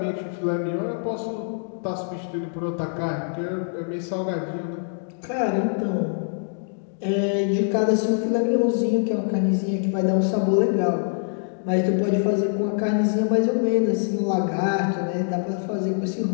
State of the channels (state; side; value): silent; right; digital silence